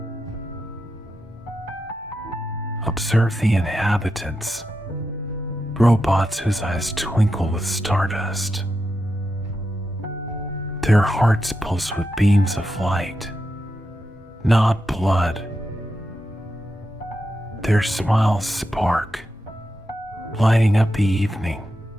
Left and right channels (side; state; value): both; normal; correlation 0.87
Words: Observe the inhabitants, robots whose eyes twinkle with stardust. Their hearts pulse with beams of light, not blood. Their smiles spark, lighting up the evening.